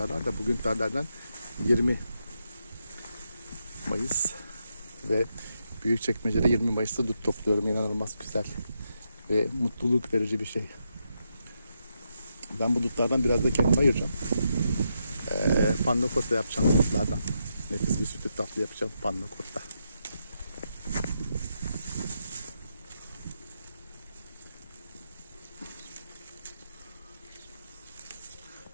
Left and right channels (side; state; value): both; inverted; correlation -0.83